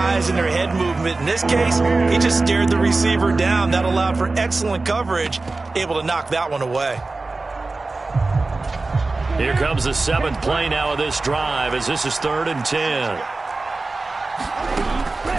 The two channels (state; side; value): quieter; left; 3.4 dB